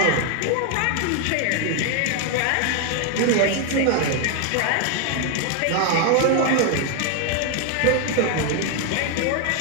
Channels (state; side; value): different; both; correlation 0.01